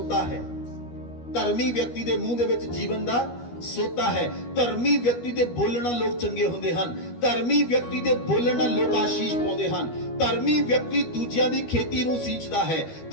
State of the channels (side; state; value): right; late; 13 ms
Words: ਹੈ। ਧਰਮੀ ਵਿਅਕਤੀ ਦੇ ਮੂੰਹ ਦੇ ਵਿੱਚ ਜੀਵਨ ਦਾ ਸੋਤਾ ਹੈ। ਧਰਮੀ ਵਿਅਕਤੀ ਦੇ ਬੋਲਣ ਨਾਲ ਲੋਕ ਚੰਗੇ ਹੁੰਦੇ ਹਨ। ਧਰਮੀ ਵਿਅਕਤੀ ਦੇ ਬੋਲਣ ਨਾਲ ਲੋਕ ਆਸ਼ੀਸ਼ ਪਾਉਂਦੇ ਹਨ। ਧਰਮੀ ਵਿਅਕਤੀ ਦੂਜਿਆਂ ਦੀ ਖੇਤੀ ਨੂੰ ਸਿੰਚਦਾ ਹੈ।